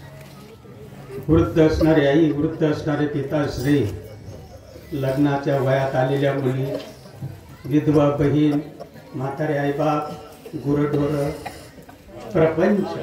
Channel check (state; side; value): identical; both; correlation 1.00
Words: वृद्ध असणारे आई, वृद्ध असणारे पिताश्री, लग्नाच्या वयात आलेल्या मुली, विधवा बहीण, म्हातारे आईबाप, गुरढोर, प्रपंच